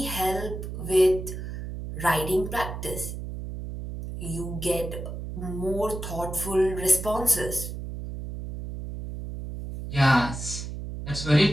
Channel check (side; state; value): right; noise; hum, 7 dB below the sound